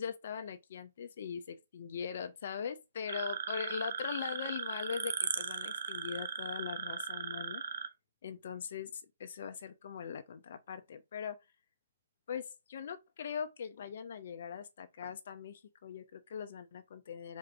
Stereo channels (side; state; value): both; inverted; correlation -0.68